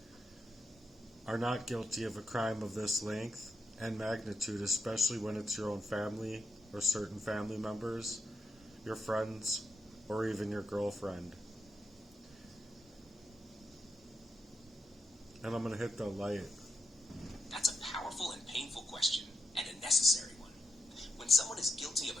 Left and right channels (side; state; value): both; normal; correlation 0.85